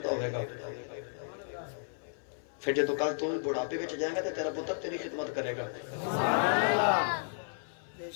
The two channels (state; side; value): silent; right; 56 dB below the other